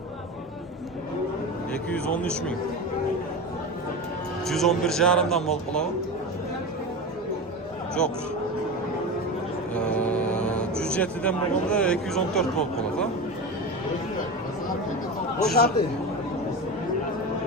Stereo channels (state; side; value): normal; both; correlation 0.24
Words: 213 ming. 111,5'dan bol qolavi. Yo'q. 107'den bo'lganda 214 bol qoladi. Bo'shadi.